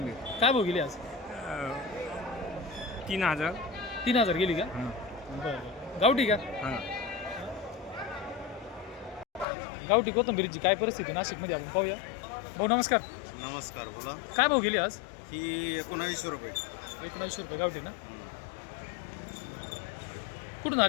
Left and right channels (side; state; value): right; drops out; at 9.5 s